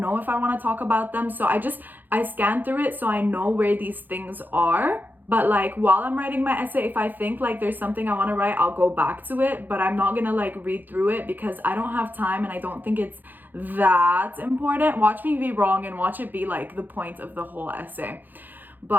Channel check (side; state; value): left; late; 0.087 ms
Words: if I want to talk about them. So I scanned through it so I know where these things are. But like while I'm writing my essay, if I think like there's something I want to write, I'll go back to it, but I'm not gonna like read through it because I don't have time and I don't think it's that important. Watch me be wrong and watch it be like the point of the whole essay.